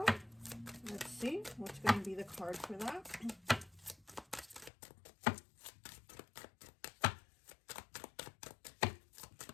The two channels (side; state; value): right; drops out; at 4.7 s